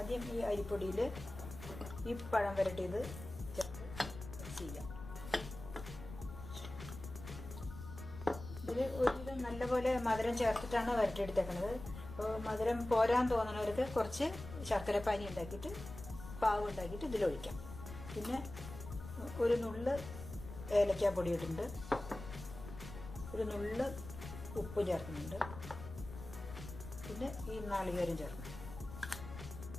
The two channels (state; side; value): noise; left; rumble, 12 dB below the sound